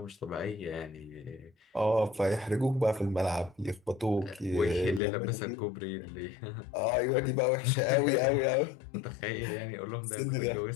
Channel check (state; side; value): drops out; right; at 5.0 s